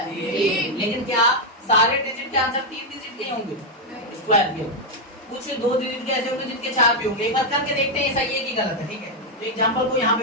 लेकिन क्या सारे डिजिट के आंसर 3 डिजिट के होंगे स्क्वायर के? कुछ 2 डिजिट के ऐसे होंगे जिनके 4 भी होंगे। एक बार करके देखते हैं सही है कि गलत है। ठीक है? तो एग्जांपल को यहाँ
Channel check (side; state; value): both; normal; correlation 0.01